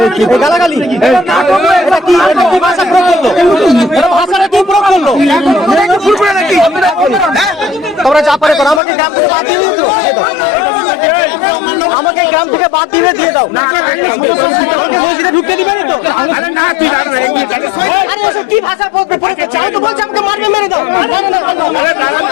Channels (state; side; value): drops out; right; at 8.8 s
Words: এই গালাগালি, এটা কি ভাষা প্রয়োগ করলো? এটা ভাষাটা কি প্রয়োগ করলো? তোমরা যা পারে করো, আমাকে গ্রাম থেকে বাদ দিয়ে দিও, আমাকে গ্রাম থেকে বাদ দিয়ে দিয়ে দাও। আমাকে মসজিদে ঢুকতে দিবে না তো? আরে এসব কি ভাষা প্রয়োগ করছে? আমি তো বলছি আমাকে মারবে, মেরে দাও। না, না, না,